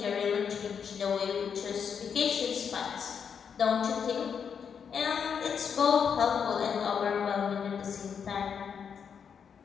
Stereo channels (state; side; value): quieter; right; 7.0 dB